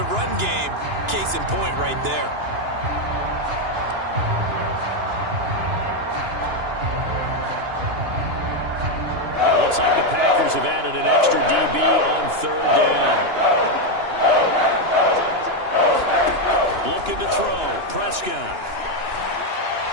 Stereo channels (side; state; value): left; late; 2.9 ms